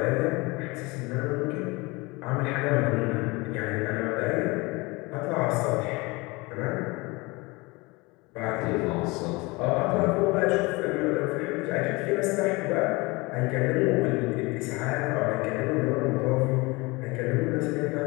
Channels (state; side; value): quieter; right; 24.7 dB